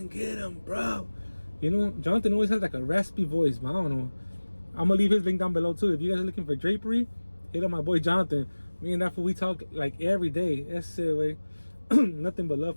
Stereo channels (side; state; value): both; inverted; correlation -1.00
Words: get him, bro. You know, Jonathan always has like a raspy voice, but I don't know. I'm gonna leave his link down below too. If you guys are looking for drapery, hit up my boy Jonathan. Me and that fool, we talk like every day. That's it, way. Nothing but love